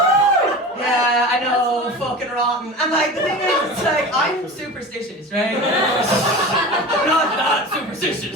Yeah, I know, fucking rotten. And like, the thing is, it's like, I'm superstitious, right? I'm not that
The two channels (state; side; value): normal; both; correlation 0.33